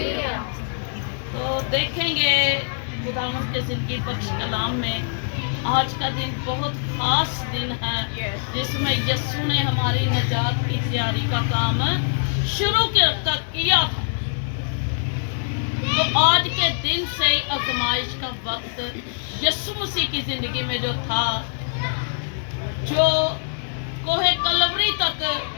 तो देखेंगे खुदावंद के जिंदगी बख्श कलाम में आज का दिन बहुत खास दिन है जिसमें यीशु ने हमारी निजात की तैयारी का काम शुरू किया था। तो आज के दिन से ही आजमाइश का वक्त यीशु मसीह की जिंदगी में जो था, जो कोहे कलवरी तक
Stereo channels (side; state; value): right; silent; digital silence